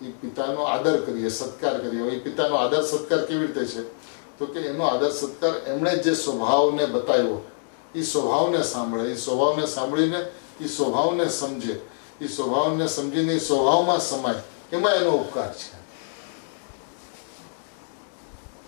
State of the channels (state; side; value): silent; right; digital silence